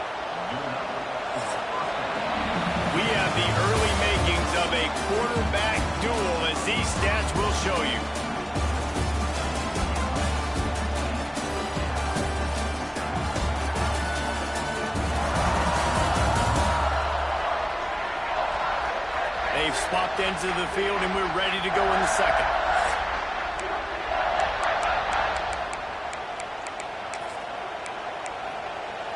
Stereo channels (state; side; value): identical; both; correlation 1.00